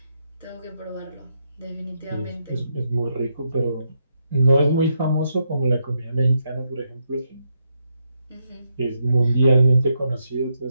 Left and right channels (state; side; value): inverted; both; correlation -0.80